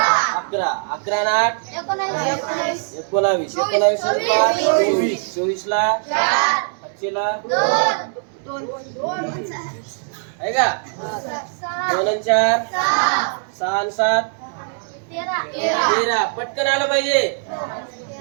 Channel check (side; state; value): left; silent; 65 dB below the other